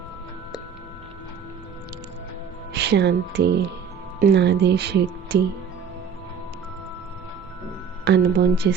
శాంతి నాదే శక్తి అనుభవం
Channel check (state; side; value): quieter; left; 6.9 dB